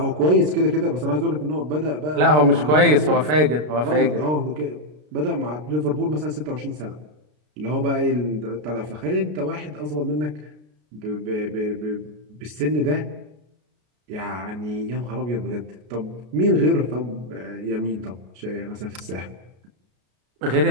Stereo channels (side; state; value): left; late; 33 ms